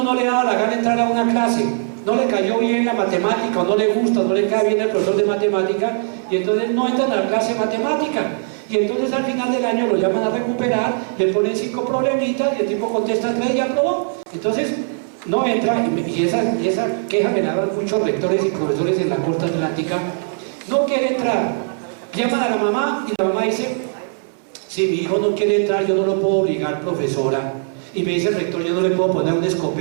no le daba la gana entrar a una clase, no le cayó bien la matemática, o no le gusta, o no le cae bien el profesor de matemática, y entonces no entran a la clase de matemática. Y entonces al final del año lo llaman a recuperar, le ponen 5 problemitas y el tipo contesta 3 y aprobó. Entonces no entra, y esa queja me la dan muchos rectores y profesores en la costa atlántica. No quiere entrar, llaman a la mamá y la mamá dice, si mi hijo no quiere entrar yo no lo puedo obligar, profesora. Y me dice el rector, yo no le puedo poner un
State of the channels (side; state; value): left; silent; 66 dB below the other